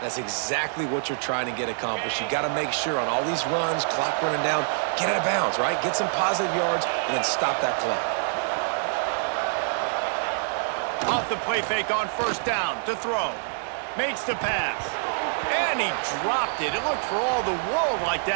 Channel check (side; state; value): left; silent; digital silence